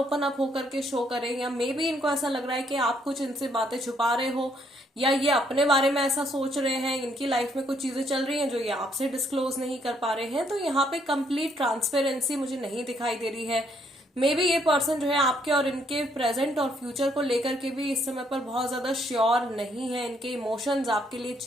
अप होकर के शो करें, या मे बी इनको ऐसा लग रहा है कि आप कुछ इनसे बातें छुपा रहे हो या ये अपने बारे में ऐसा सोच रहे हैं, इनकी लाइफ में कुछ चीजें चल रही हैं जो ये आपसे डिस्क्लोज नहीं कर पा रहे हैं। तो यहाँ पे कंप्लीट ट्रांसपेरेंसी मुझे नहीं दिखाई दे रही है। मे बी ये पर्सन जो है आपके और इनके प्रेजेंट और फ्यूचर को लेकर के भी इस समय पर बहुत ज्यादा श्योर नहीं है। इनके इमोशंस आपके लिए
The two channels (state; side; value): normal; both; correlation 0.70